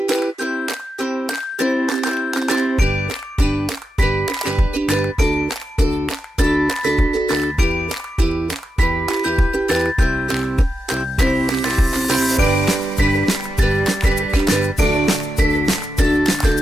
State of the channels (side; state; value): both; normal; correlation 0.88